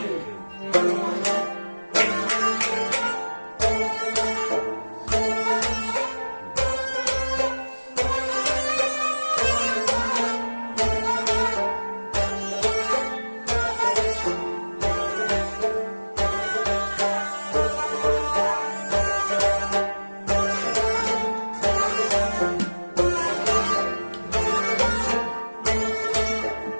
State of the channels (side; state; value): both; inverted; correlation -1.00